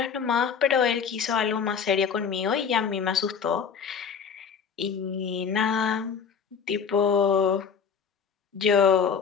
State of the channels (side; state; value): right; quieter; 6.6 dB